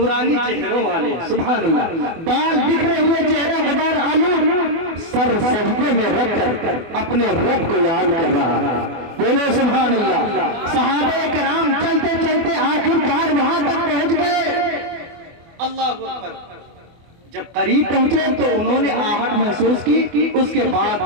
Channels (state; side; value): late; left; 24 ms